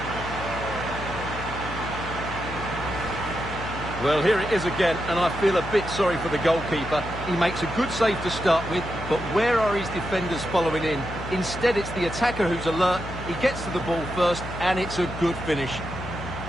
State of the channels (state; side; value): noise; left; hum, 10 dB below the sound